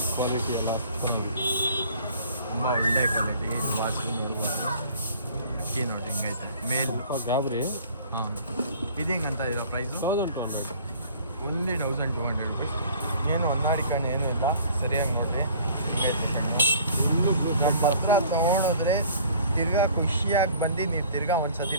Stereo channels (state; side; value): inverted; both; correlation -0.51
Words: ಕ್ವಾಲಿಟಿ ಎಲ್ಲ ಚೆನ್ನಾಗಿದೆ. ತುಂಬ ಒಳ್ಳೆ ಕ್ವಾಲಿಟಿ ಡುಬಾಸ್. ಅಕ್ಕಿ ನೋಡಿ ಹೆಂಗೈತೆ ಮೇಲ್. ಗಾಬರಿ. ಹಾಂ, ಇದು ಹೆಂಗಂತ ಇರೋ ಪ್ರೈಸು? 1200. Only 1200 rupees. ಏನು ಹೊನ್ನಾಡಿಕೊಂಡು ಏನೂ ಇಲ್ಲ. ಸರಿಯಾಗಿ ನೋಡಿರಿ ಹೆಂಗೈತೆ ಕಣ್ಣು. ನಮ್ಮ ಹತ್ರ ತೊಗೊಂಡೋದ್ರೆ ತಿರ್ಗಾ ಖುಷಿಯಾಗಿ ಬಂದು ನೀವು ತಿರ್ಗಾ ಒಂದು ಸತಿ